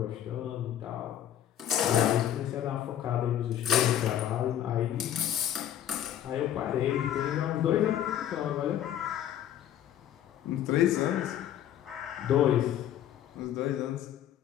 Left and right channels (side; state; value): right; quieter; 10.9 dB